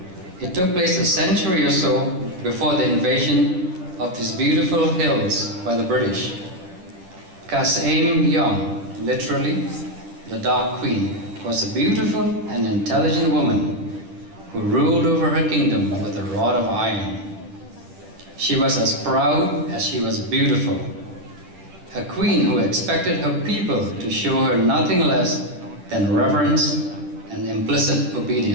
It took place a century or so before the invasion of these beautiful hills by the British. Khasi, literally the Dark Queen, was a beautiful and intelligent woman who ruled over her kingdom with a rod of iron. She was as proud as she was beautiful. A queen who expected her people to show her nothing less than reverence and implicit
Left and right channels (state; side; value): late; left; 10 ms